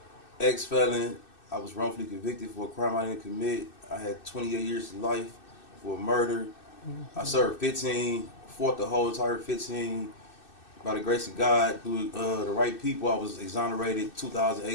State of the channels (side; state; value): right; late; 2.6 ms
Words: Ex-felon. I was wrongfully convicted for a crime I didn't commit. I had 28 years of life for murder. I served 15. Fought the whole entire 15. By the grace of God, through the right people, I was exonerated